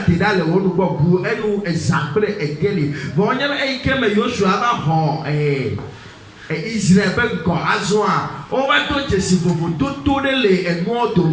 tidale wonu gbogu enu example egeli wanyama keme Joshua ba ho Israel ben ko azwa o ba to jesi fofu to de le enu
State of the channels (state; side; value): identical; both; correlation 1.00